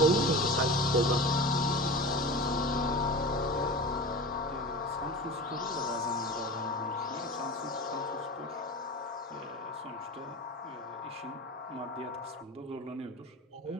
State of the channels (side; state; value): both; normal; correlation 0.31